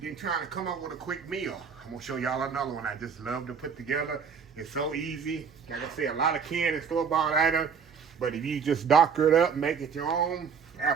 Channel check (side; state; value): left; quieter; 6.3 dB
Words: then trying to come up with a quick meal. I'm going to show y'all another one I just love to put together. It's so easy. Like I say, a lot of canned and store-bought items. But if you just doctor it up and make it your own,